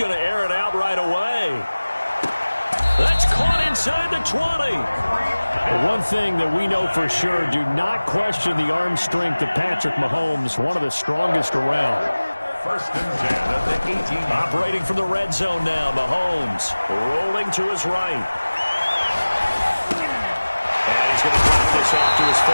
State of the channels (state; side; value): inverted; both; correlation -1.00